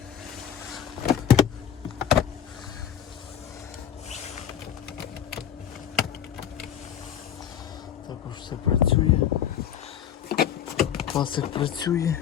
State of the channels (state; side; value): quieter; right; 9.5 dB